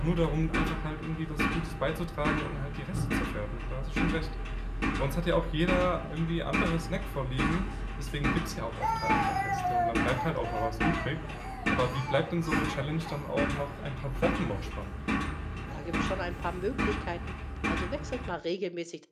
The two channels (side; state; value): both; identical; correlation 1.00